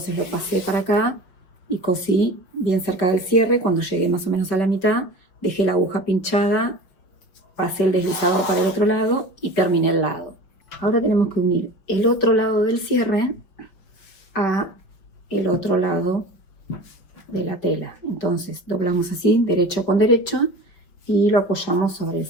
lo pasé para acá y cosí bien cerca del cierre. Cuando llegué más o menos a la mitad, dejé la aguja pinchada, pasé el deslizador para el otro lado y terminé el lado. Ahora tenemos que unir el otro lado del cierre a el otro lado de la tela. Entonces doblamos así, derecho con derecho, y lo apoyamos sobre el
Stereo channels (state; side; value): late; right; 5.3 ms